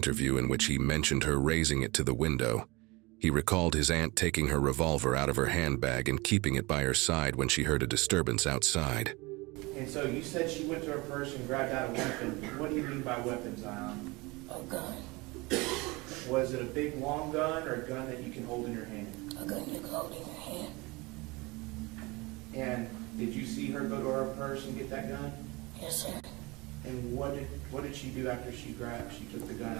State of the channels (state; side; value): quieter; left; 24.3 dB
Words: in which he mentioned her raising it to the window, he recalled his aunt taking her revolver out of her handbag and keeping it by her side when she heard a disturbance outside. And so you said she went to her purse and grabbed out a weapon. What do you mean by weapon, Zion? A gun. Was it a big long gun or a gun that you can hold in your hand? A gun you can hold in your hand. And did you see her go to her purse and get that gun? Yes, sir. And what did she do after she took the gun